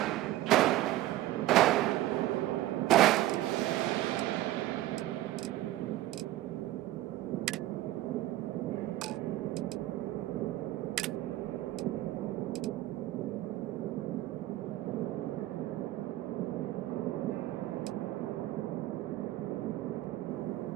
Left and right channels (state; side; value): quieter; left; 15.4 dB